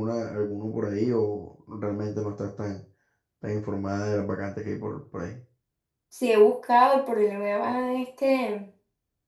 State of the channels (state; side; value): identical; both; correlation 1.00